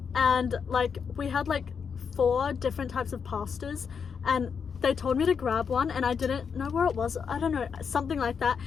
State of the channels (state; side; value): quieter; right; 6.4 dB